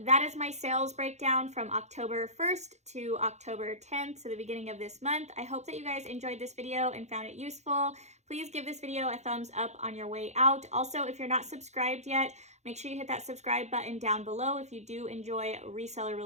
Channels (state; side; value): late; left; 0.33 ms